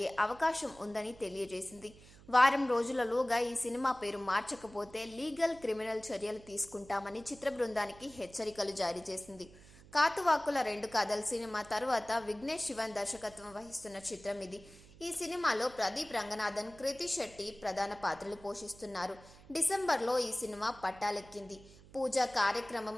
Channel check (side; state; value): right; noise; hum, 21 dB below the sound